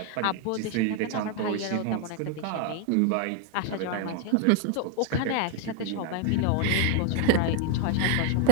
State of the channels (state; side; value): different; both; correlation 0.00